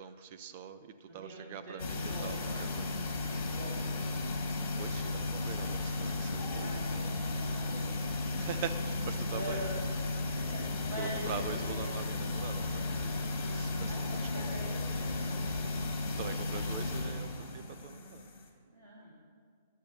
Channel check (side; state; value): both; inverted; correlation -0.71